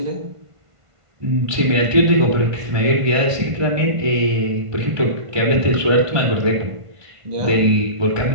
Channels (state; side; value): late; left; 1.5 ms